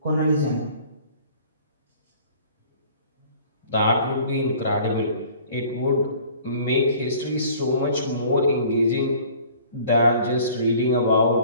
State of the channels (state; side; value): inverted; both; correlation -0.51